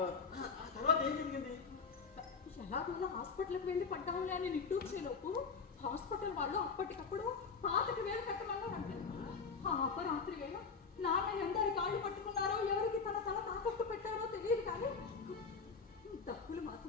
తర్వాత ఏం జరిగింది? ఎలాగోలా హాస్పిటల్కి వెళ్ళి పడ్డాంలే అని నిట్టూర్చేలోపు హాస్పిటల్ వాళ్ళు అప్పటికప్పుడు 5,000 కట్టమన్నారంటే. ఆ అపరాత్రి వేళ నాన్న ఎందరి కాళ్ళు పట్టుకున్నారో, ఎవరికి తన తల తాకట్టు పెట్టారో తెలియదు, కానీ డబ్బులు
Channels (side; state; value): right; quieter; 5.2 dB